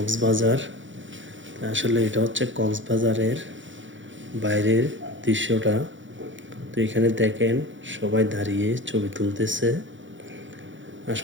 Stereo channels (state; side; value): late; left; 0.56 ms